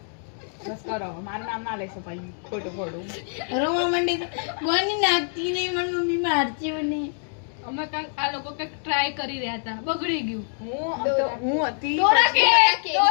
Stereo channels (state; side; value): silent; right; 62 dB below the other